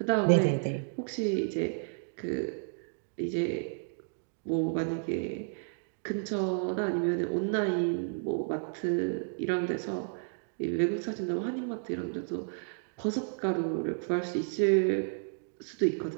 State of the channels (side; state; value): left; silent; digital silence